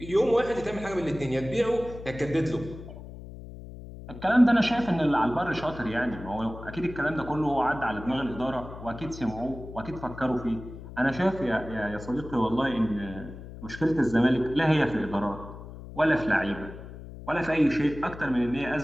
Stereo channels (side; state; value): left; noise; hum, 13 dB below the sound